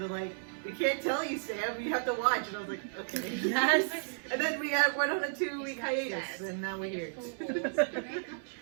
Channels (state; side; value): silent; left; 56 dB below the other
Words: were like, we can't tell you, Sam. You have to watch. And I was like, okay. Yes. And then we went on a 2-week hiatus, and now we're here.